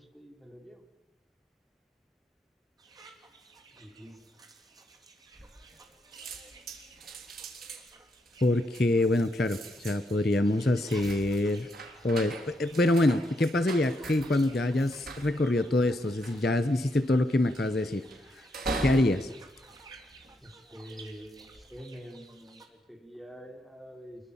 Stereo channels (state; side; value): normal; both; correlation 0.79